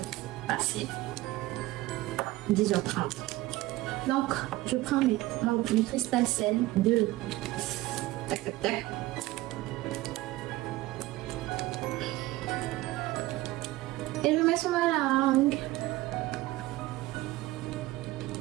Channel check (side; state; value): left; quieter; 18.0 dB